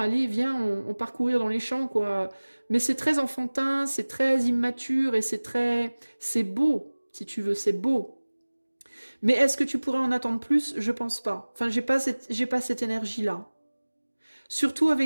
viens, on parcourir dans les champs, quoi. Mais c'est très enfantin, c'est très immature et c'est beau, si tu veux, c'est beau. Mais est-ce que tu pourrais en attendre plus? Je pense pas. Enfin, j'ai pas cette énergie-là. Surtout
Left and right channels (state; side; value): inverted; both; correlation -1.00